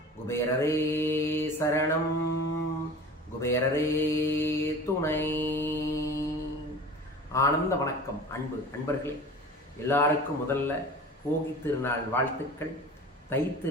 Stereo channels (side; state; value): both; normal; correlation 0.38